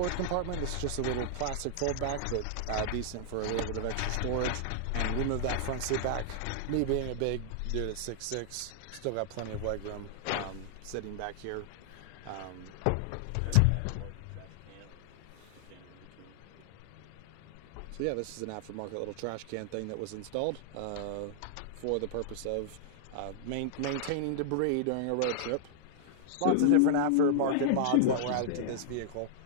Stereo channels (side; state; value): both; different; correlation -0.01